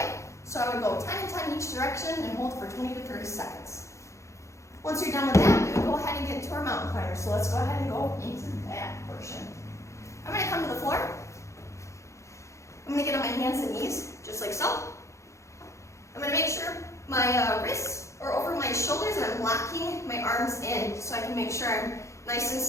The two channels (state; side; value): late; right; 0.14 ms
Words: So I would go 10 and 10 each direction and hold for 20 to 30 seconds. Once you're done with that, we would go ahead and get into our mountain climber. So let's go ahead and go into that portion. I'm going to come to the floor. I'm going to get on my hands and knees, just like so. I'm going to make sure my wrists are over my shoulders and I'm locking my arms in so I can make sure I'm nice and